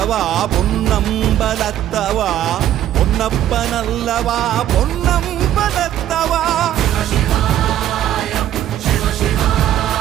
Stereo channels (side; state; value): left; quieter; 11.9 dB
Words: பொன்னம்பலத்தவா, பொன்னப்பனல்லவா பொன்னம்பலத்தவா.